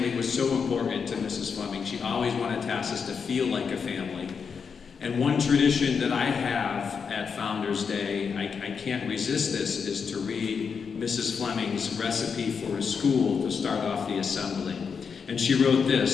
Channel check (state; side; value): quieter; right; 6.0 dB